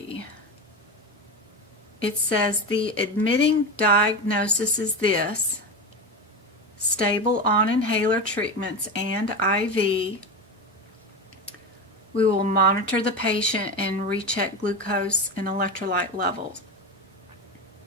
It says the admitting diagnosis is this: stable on inhaler treatments and IV. We will monitor the patient and recheck glucose and electrolyte levels.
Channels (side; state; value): both; normal; correlation 0.20